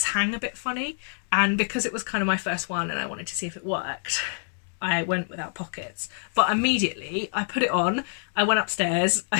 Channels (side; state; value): right; silent; digital silence